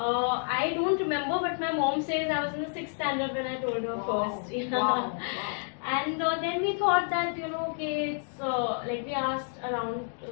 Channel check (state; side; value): silent; right; 58 dB below the other